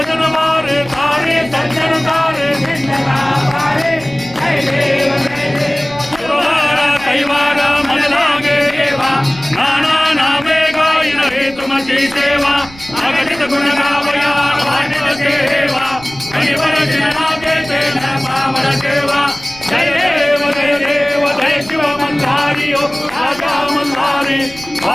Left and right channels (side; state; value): right; noise; rumble, 20 dB below the sound